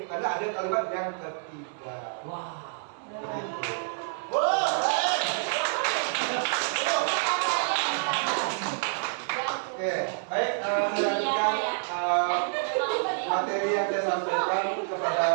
karena ada kalimat yang ketiga. Wah. Begitu. Oke, baik, melanjutkan materi yang saya sampaikan kepada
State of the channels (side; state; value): left; silent; 59 dB below the other